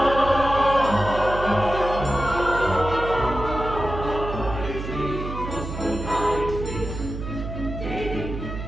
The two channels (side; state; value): right; noise; hum, 7 dB below the sound